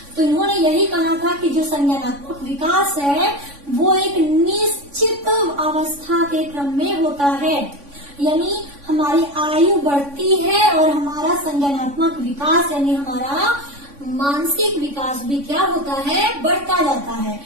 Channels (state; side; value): late; left; 3.5 ms